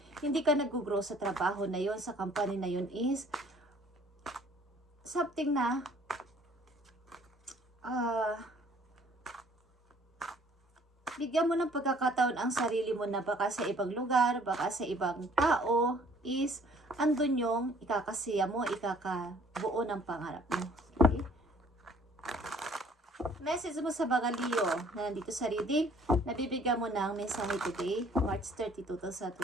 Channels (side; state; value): both; normal; correlation 0.57